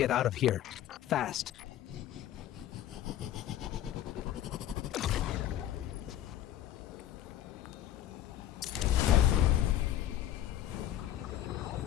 out of here. Fast.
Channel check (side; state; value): right; quieter; 12.1 dB